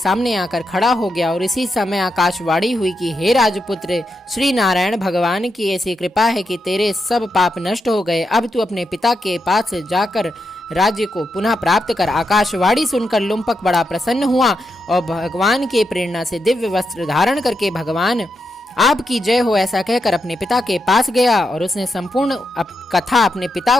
आकर खड़ा हो गया और इसी समय आकाशवाणी हुई कि हे राजपुत्र, श्री नारायण भगवान की ऐसी कृपा है कि तेरे सब पाप नष्ट हो गए। अब तू अपने पिता के पास जाकर राज्य को पुनः प्राप्त कर। आकाशवाणी सुनकर लुम्पक बड़ा प्रसन्न हुआ और भगवान के प्रेरणा से दिव्य वस्त्र धारण करके भगवान आपकी जय हो ऐसा कहकर अपने पिता के पास गया और उसने संपूर्ण कथा अपने पिता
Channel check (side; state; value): both; normal; correlation 0.85